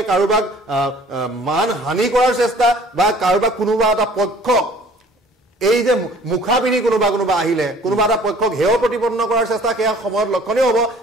কাৰোবাক মান হানি কৰাৰ চেষ্টা বা কাৰোবাক কোনোবা এটা পক্ষক এই যে মুখা পিন্ধি কোনোবা আহিলে কোনোবা এটা পক্ষক হেয় প্ৰতিপন্ন কৰাৰ চেষ্টা, সেয়া সময়ত লক্ষণীয় হ'ব।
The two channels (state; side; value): normal; both; correlation 0.52